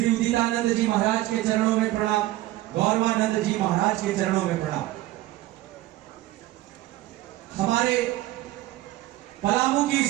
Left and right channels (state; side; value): quieter; left; 16.7 dB